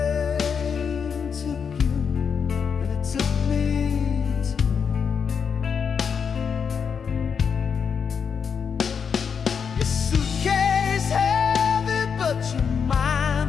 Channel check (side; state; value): right; quieter; 6.5 dB